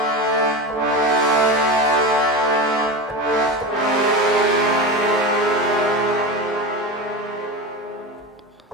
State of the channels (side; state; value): both; normal; correlation 0.23